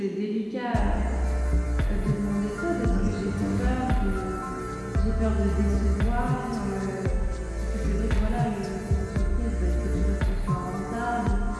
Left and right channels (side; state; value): both; identical; correlation 1.00